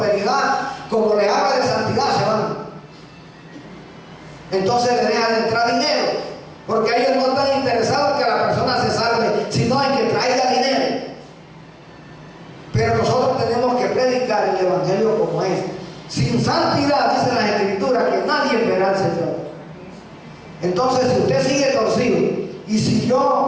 como les habla de santidad, se van. Entonces le dejan de entrar dinero, porque ellos no están interesados en que la persona se salve, sino en que traiga dinero. Pero nosotros tenemos que predicar el evangelio como es. Sin santidad, dice las escrituras, que nadie verá al Señor. Entonces, si usted sigue torcido, y si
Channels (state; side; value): identical; both; correlation 1.00